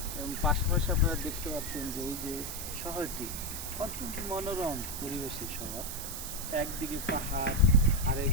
এবং পাশাপাশি আপনারা দেখতে পাচ্ছেন যে এই যে শহরটি অত্যন্ত মনোরম পরিবেশের শহর। একদিকে পাহাড়,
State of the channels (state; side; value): noise; right; hiss, 6 dB below the sound